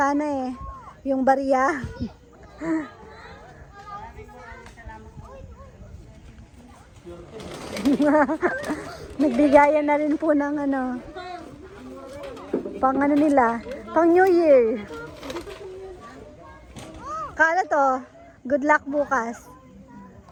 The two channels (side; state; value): both; identical; correlation 1.00